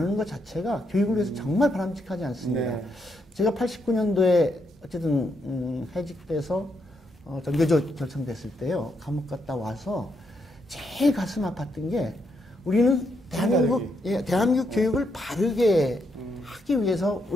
것 자체가 교육을 위해서 정말 바람직하지 않습니다. 네. 제가 89년도에 어쨌든 해직돼서 전교조 결성됐을 때요. 감옥 갔다 와서 제일 가슴 아팠던 게 우리는 대한민국 교육을 바르게 하기 위해서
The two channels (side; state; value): both; normal; correlation 0.78